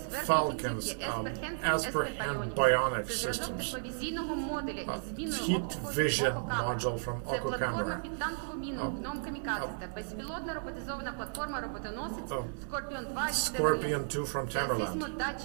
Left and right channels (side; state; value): left; silent; digital silence